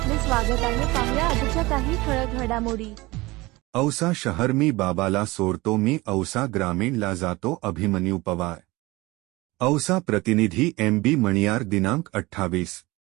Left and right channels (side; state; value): left; quieter; 21.4 dB